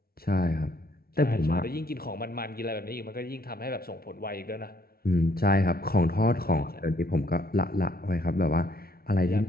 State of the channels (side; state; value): right; late; 0.44 ms